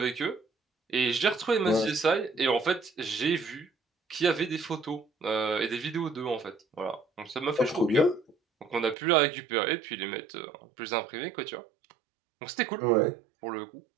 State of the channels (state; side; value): drops out; left; at 9.0 s